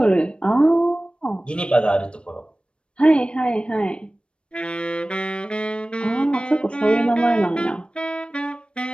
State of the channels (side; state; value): right; late; 0.057 ms